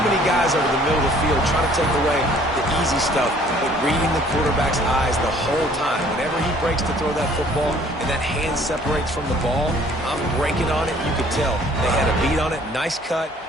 many guys over the middle of the field trying to take away the easy stuff, but reading the quarterback's eyes the whole time. Whenever he breaks to throw that football and that hand separates from the ball, I'm breaking on it. You could tell they had a beat on it. Nice cut,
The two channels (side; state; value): both; normal; correlation 0.57